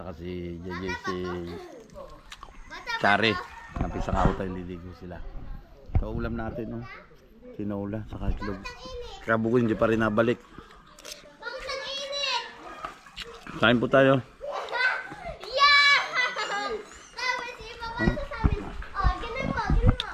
saka si JJ, si Chari. Napisa ka tayo, liligo sila. So ulam natin tinola saka itlog. Kabugoy hindi pa rin nabalik. Kain po tayo.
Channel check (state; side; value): identical; both; correlation 1.00